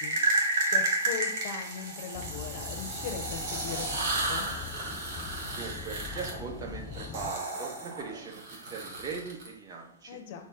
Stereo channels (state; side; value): inverted; both; correlation -0.37